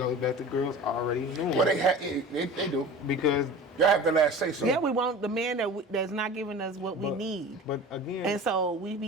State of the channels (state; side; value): normal; both; correlation 0.37